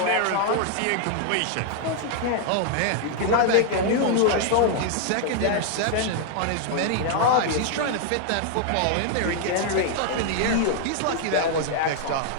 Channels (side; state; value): both; different; correlation 0.00